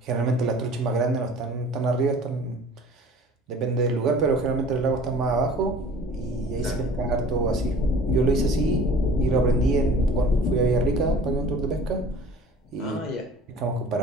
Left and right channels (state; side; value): normal; both; correlation 0.46